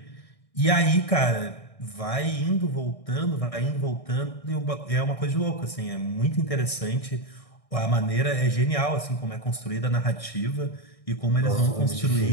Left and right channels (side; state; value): right; late; 1.6 ms